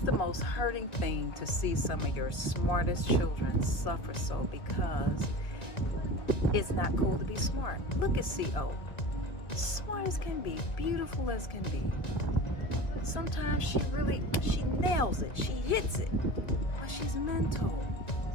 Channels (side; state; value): right; late; 2.1 ms